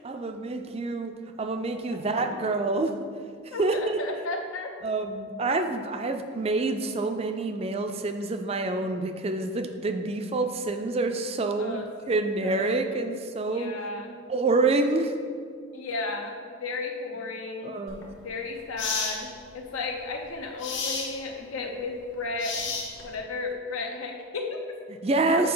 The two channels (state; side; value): normal; both; correlation 0.22